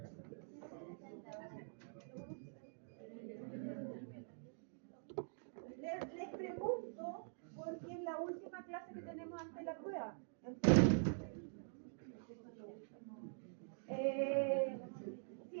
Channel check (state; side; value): silent; left; digital silence